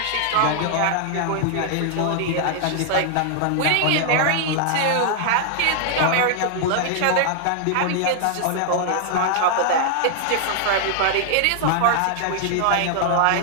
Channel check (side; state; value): both; different; correlation 0.00